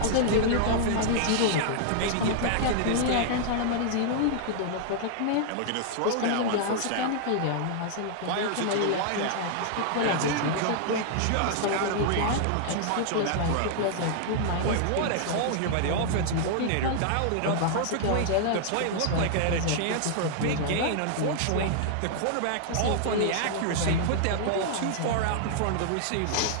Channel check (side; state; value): both; different; correlation -0.01